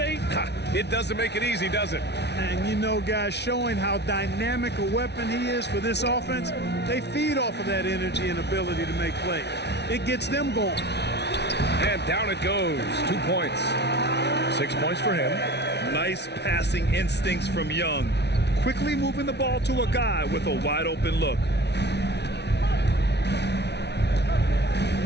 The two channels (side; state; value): right; late; 0.50 ms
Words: It doesn't make it easy, does it? And you know, guys, showing how dynamic a weapon he is for this offense, they feed off of that energy and ability to make plays. It gets them going. And down it goes. 2 points. 6 points for him. Nice passing instincts from Young. Quickly moving the ball to a guy with a wide open look.